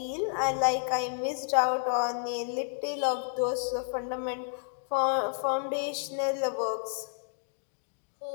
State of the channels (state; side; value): silent; right; digital silence